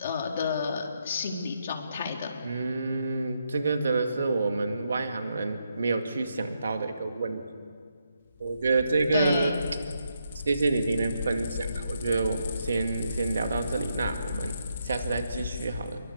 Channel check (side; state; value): both; inverted; correlation -0.80